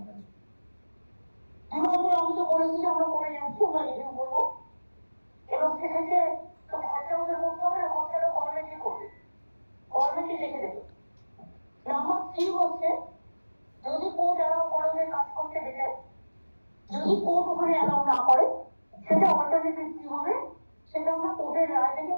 2 নম্বর, আমি তো বলেছি যে আমরা করে যাচ্ছি, আমরা রিভিউ করবো, এবং সেক্ষেত্রে খরচা ওদের করতে হবে না, খরচাটা গভর্নমেন্টই করবে, গভর্নমেন্টই দেখে দেবে। নাম্বার 3 হচ্ছে, যদি কোর্ট অ্যালাউ করে ওদের কাজ করতে দেবে, যদি কোর্ট ওখানে অ্যালাউ না করে, সেটা অল্টারনেটিভ কি হবে সেটা আমরা কোর্টের রায় থেকে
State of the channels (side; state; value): both; inverted; correlation -1.00